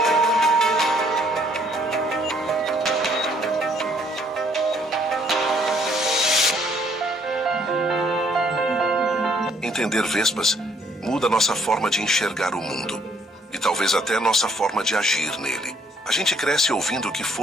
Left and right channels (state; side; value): normal; both; correlation 0.65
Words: Entender vespas muda nossa forma de enxergar o mundo e talvez até nossa forma de agir nele. A gente cresce ouvindo que